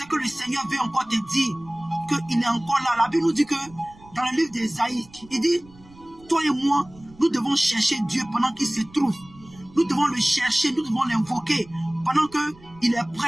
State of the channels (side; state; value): right; noise; rumble, 24 dB below the sound